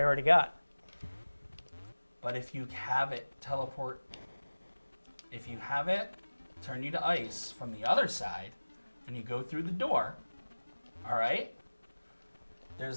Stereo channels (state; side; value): inverted; both; correlation -1.00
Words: already got. But if you have it teleport, if you have it turn you to ice from the other side, and you go through the door, all right?